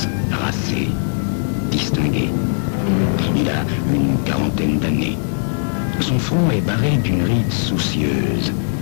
racé, distingué. Il a une quarantaine d'années. Son front est barré d'une ride soucieuse.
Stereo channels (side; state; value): right; silent; digital silence